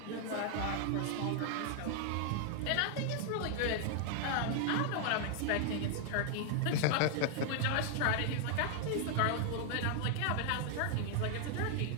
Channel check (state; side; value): different; both; correlation 0.00